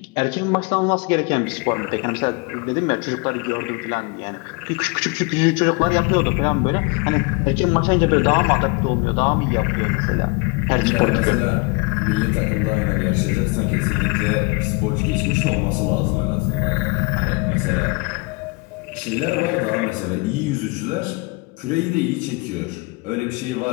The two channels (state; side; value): quieter; right; 27.5 dB